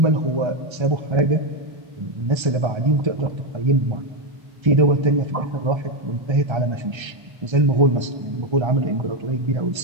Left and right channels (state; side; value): late; left; 1.3 ms